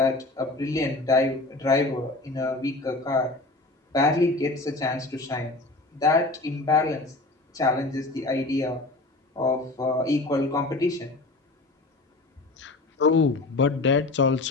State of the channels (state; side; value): quieter; right; 3.1 dB